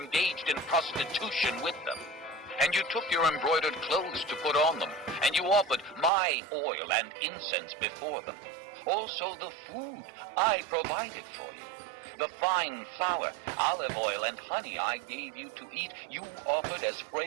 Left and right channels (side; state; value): left; drops out; at 6.1 s